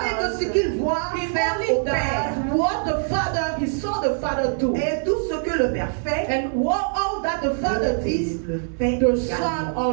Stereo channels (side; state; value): left; silent; 63 dB below the other